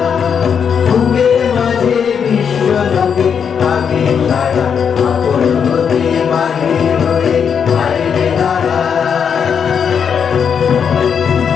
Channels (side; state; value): right; quieter; 7.1 dB